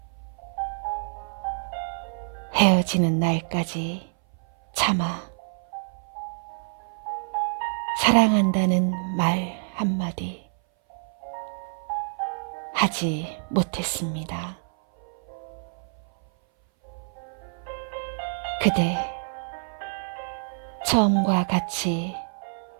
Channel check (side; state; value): left; silent; 58 dB below the other